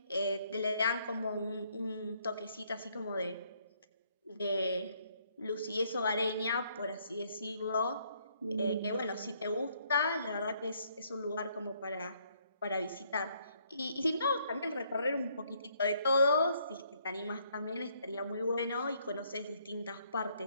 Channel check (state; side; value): inverted; both; correlation -0.69